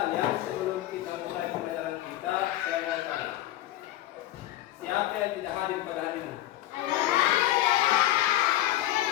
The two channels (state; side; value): quieter; right; 14.4 dB